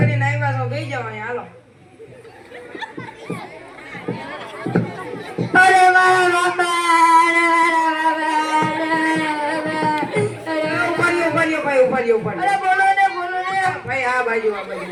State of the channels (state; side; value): identical; both; correlation 1.00